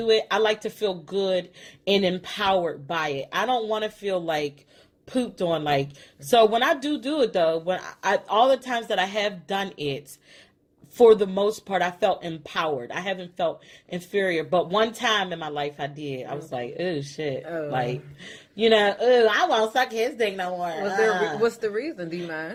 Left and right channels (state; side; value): identical; both; correlation 1.00